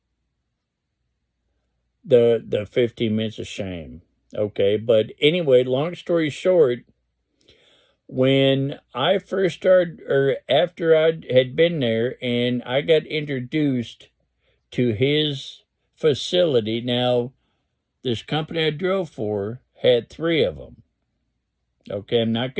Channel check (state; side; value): identical; both; correlation 1.00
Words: the 15 minutes of shame. Okay, but anyway, long story short, when I first started, or after I had been there and I got introduced to his facility, now this company I drove for had 3 of them. Okay, I'm not